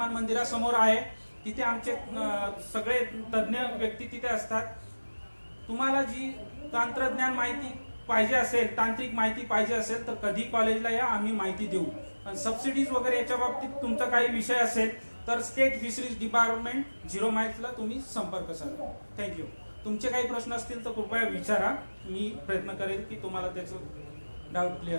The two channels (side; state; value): both; inverted; correlation -1.00